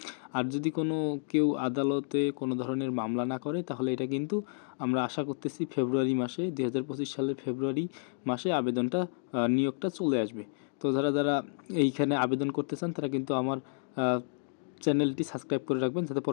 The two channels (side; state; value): right; silent; digital silence